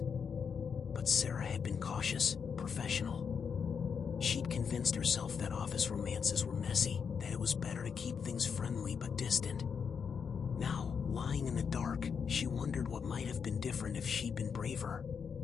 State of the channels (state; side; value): quieter; right; 6.5 dB